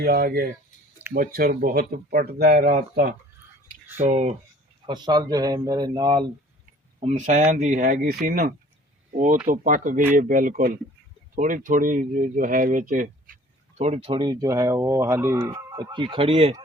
आ गए, मच्छर बहुत पटता है रात का। तो फसल जो है मेरे नाल हमसायां दी हैगी सी ना, वो तो पक गई है बिल्कुल। थोड़ी थोड़ी जो है विच थोड़ी थोड़ी जो है वो हाली कच्ची खड़ी है,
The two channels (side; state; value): both; normal; correlation 0.52